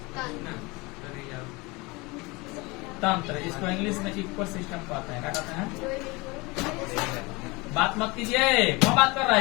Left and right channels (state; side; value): quieter; right; 25.1 dB